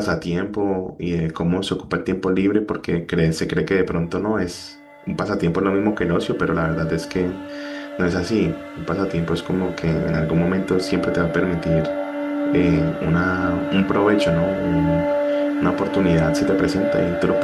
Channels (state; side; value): identical; both; correlation 1.00